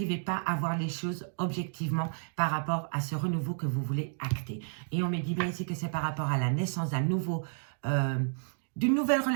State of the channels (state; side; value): silent; left; digital silence